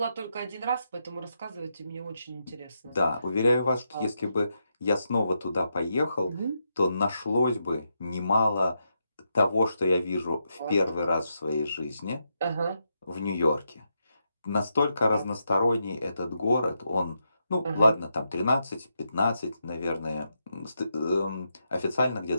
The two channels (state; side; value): inverted; both; correlation -0.83